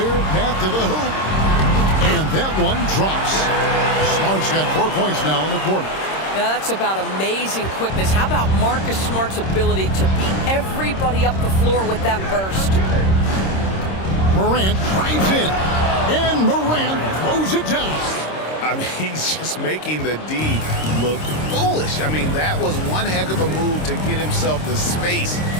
path to the hoop. And that one drops. Smart's got 4 points now in the quarter. Now that's about amazing quickness. How about Marcus Smart's ability to beat everybody up the floor with that burst? Morant drives in. And Morant throws it down. I mean, he's just making the D look foolish. I mean, that was one heck of a move to get himself the space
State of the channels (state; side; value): late; right; 26 ms